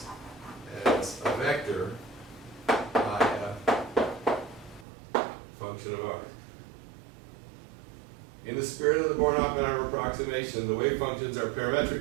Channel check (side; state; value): left; drops out; at 4.9 s